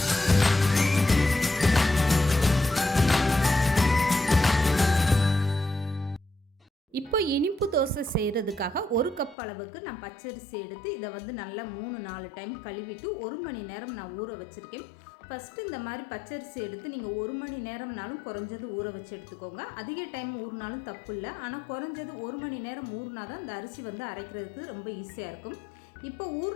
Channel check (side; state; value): right; drops out; at 9.3 s